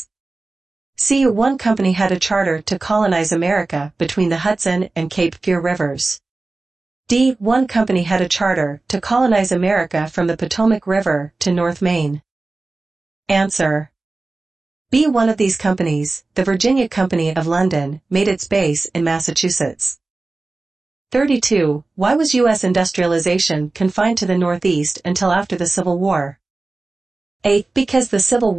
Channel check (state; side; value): quieter; left; 3.4 dB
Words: C. One company had a charter to colonize America between the Hudson and Cape Fear rivers. D. One company had a charter to colonize America from the Potomac River to North Maine. Answer. B. One of these companies, the Virginia Company of London, made its base in Massachusetts. 32. Why was U.S. industrialization confined to the Northeast until after the Civil War? A. Because the Civil